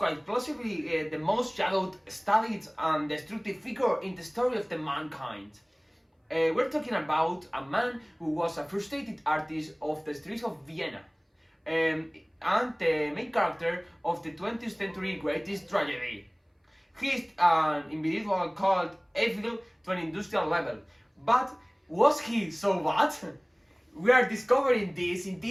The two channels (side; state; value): both; identical; correlation 1.00